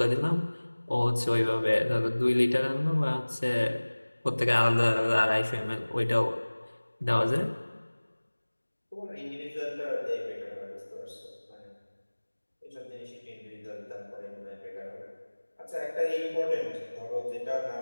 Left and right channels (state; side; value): inverted; both; correlation -1.00